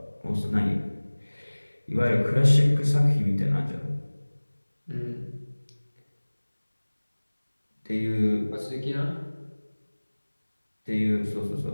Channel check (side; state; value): both; inverted; correlation -1.00